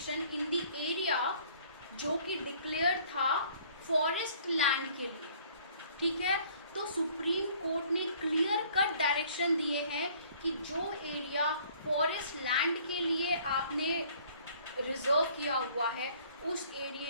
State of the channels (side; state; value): both; inverted; correlation -0.56